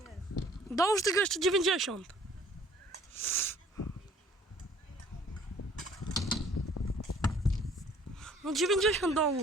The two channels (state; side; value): normal; both; correlation 0.56